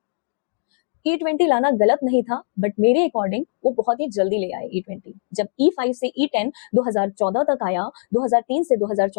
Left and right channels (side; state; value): right; silent; digital silence